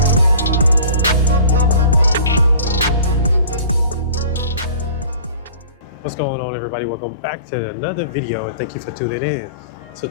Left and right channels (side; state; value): both; inverted; correlation -0.44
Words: What's going on, everybody? Welcome back to another video and thank you for tuning in. So